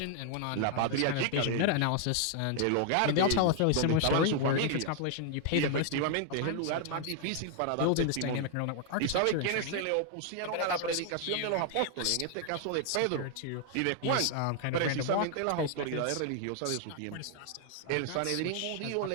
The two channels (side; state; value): both; different; correlation 0.00